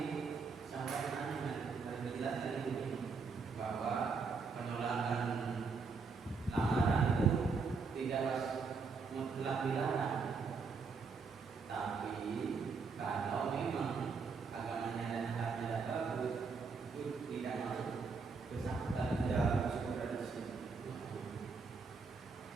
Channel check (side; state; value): left; quieter; 4.9 dB